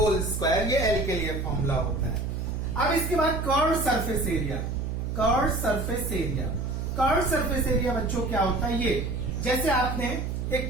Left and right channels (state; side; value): noise; right; hum, 3 dB below the sound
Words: square. ये L के लिए फॉर्मूला होता है। अब इसके बाद curve surface area. Curve surface area, curve surface area बच्चों क्या होता है? ये जैसे आपने